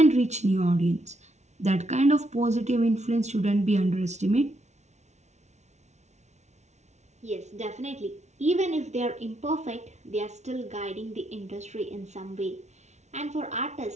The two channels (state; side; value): late; left; 0.32 ms